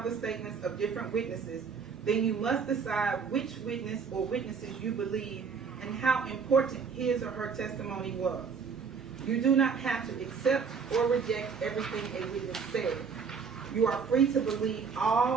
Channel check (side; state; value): left; quieter; 5.8 dB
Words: the statements of different witnesses, then you must decide which witness or witnesses you believe and how important his or her testimony was. You do not have to accept or reject everything a witness said. You are free to believe